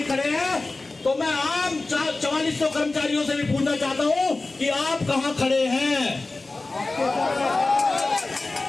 खड़े हैं, तो मैं आम 4400 कर्मचारियों से भी पूछना चाहता हूं कि आप कहां खड़े हैं।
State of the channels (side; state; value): right; quieter; 3.3 dB